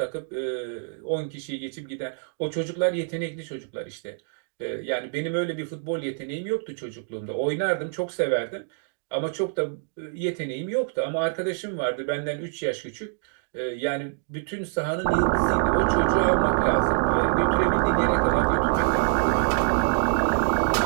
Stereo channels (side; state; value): left; silent; digital silence